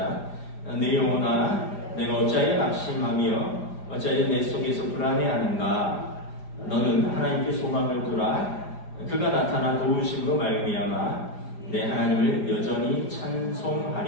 내 영혼아, 내가 어찌하여 낙심하며 어찌하여 내 속에서 불안해하는가? 너는 하나님께 소망을 두라. 그가 나타나 도우심으로 말미암아 내 하나님을 여전히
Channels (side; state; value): right; late; 4.9 ms